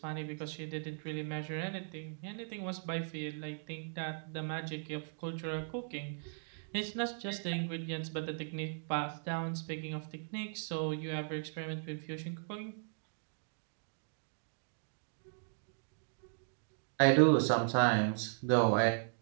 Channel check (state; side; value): silent; left; digital silence